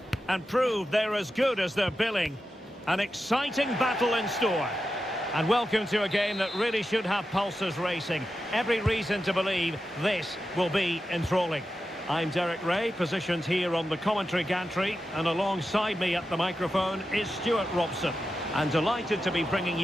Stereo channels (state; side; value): normal; both; correlation 0.91